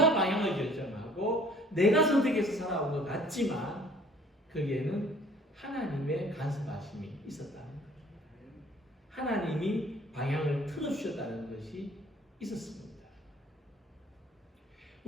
방향을 결정하고 내가 선택해서 살아온 것 같지만 거기에는 하나님의 간섭하심이 있었다는 거예요. 하나님이 방향을 틀어주셨다는 것이 있었습니다.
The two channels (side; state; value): both; normal; correlation 0.55